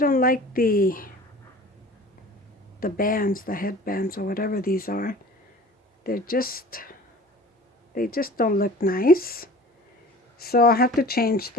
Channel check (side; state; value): both; normal; correlation 0.43